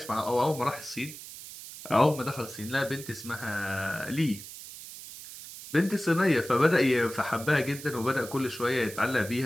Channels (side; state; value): right; noise; hiss, 13 dB below the sound